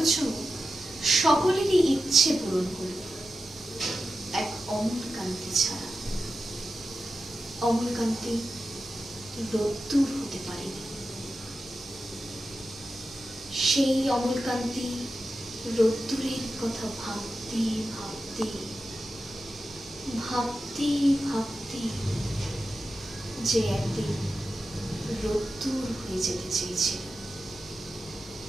সকলেরই ইচ্ছে পূরণ করল, এক অমলকান্তি ছাড়া। অমলকান্তি রোদ্দুর হতে পারেনি। সেই অমলকান্তি রোদ্দুরের কথা ভাবতে ভাবতে ভাবতে ভাবতে যে একদিন রোদ্দুর হয়ে যেতে চেয়েছিল।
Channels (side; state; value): both; normal; correlation 0.91